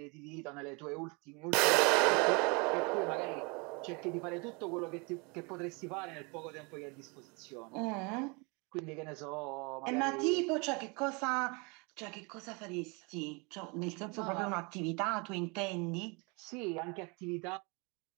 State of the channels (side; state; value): left; quieter; 30.1 dB